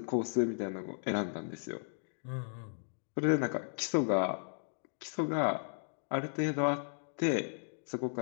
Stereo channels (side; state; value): right; silent; digital silence